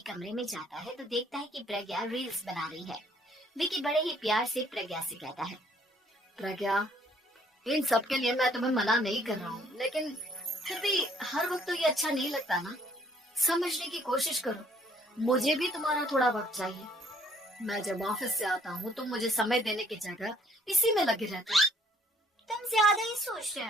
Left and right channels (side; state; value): both; normal; correlation 0.62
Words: कमरे में जाता है तो देखता है कि प्रज्ञा रील्स बना रही है। विकी बड़े ही प्यार से प्रज्ञा से कहता है, प्रज्ञा, इन सब के लिए मैं तुम्हें मना नहीं कर रहा हूँ, लेकिन फिर भी हर वक्त तो ये अच्छा नहीं लगता ना। समझने की कोशिश करो, मुझे भी तुम्हारा थोड़ा वक्त चाहिए। मैं जब ऑफिस से आता हूँ तो मुझे समय देने की जगह इसी में लगे रहते हो। तुम ज्यादा ही सोच रहे